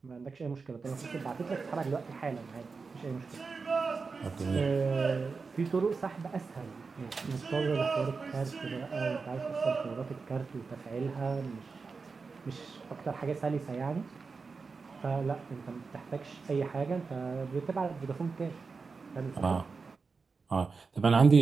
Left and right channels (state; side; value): quieter; left; 4.7 dB